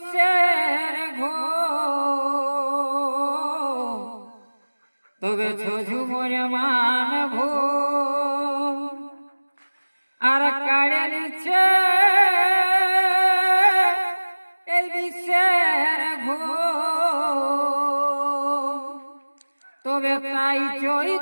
ঘো তবে ঝুমুর মান ভূম আর কাড়ে নিচে এই বিশ্বের ঘো তবে তাই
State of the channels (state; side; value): inverted; both; correlation -1.00